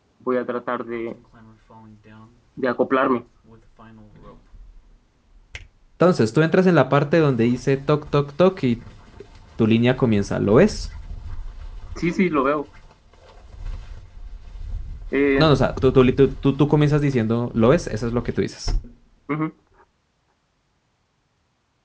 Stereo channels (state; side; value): identical; both; correlation 1.00